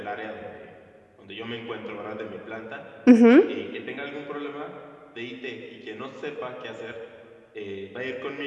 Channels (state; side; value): identical; both; correlation 1.00